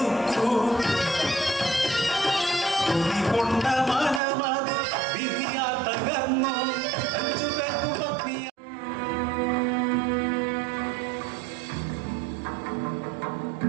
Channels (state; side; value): drops out; left; at 4.2 s